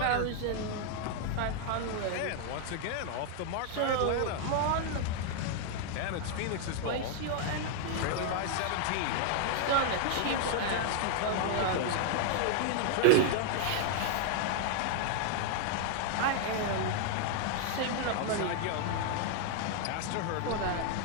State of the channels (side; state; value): both; different; correlation 0.00